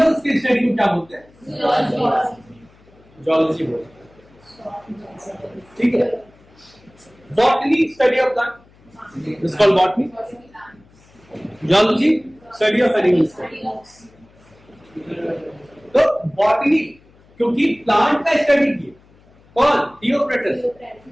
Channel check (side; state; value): left; noise; hum, 29 dB below the sound